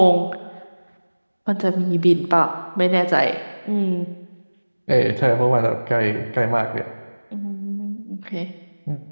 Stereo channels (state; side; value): inverted; both; correlation -1.00